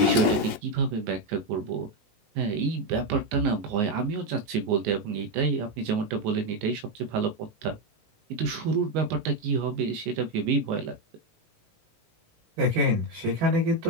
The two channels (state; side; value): late; left; 19 ms